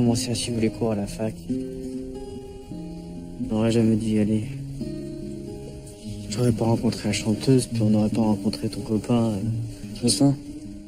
à suivre les cours à la fac. On n'aurait jamais dû y aller. J'aurais pas rencontré la chanteuse, puis on n'aurait pas rencontré ton copain. Jocelyn.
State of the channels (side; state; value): both; identical; correlation 1.00